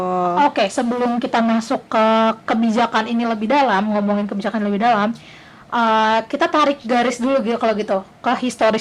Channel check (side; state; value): both; identical; correlation 1.00